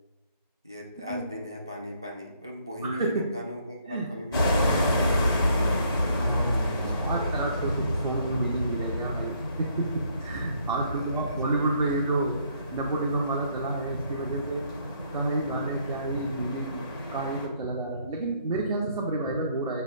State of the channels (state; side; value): inverted; both; correlation -0.67